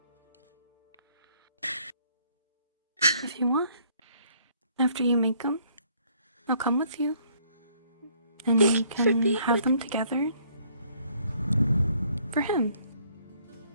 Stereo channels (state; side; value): inverted; both; correlation -0.64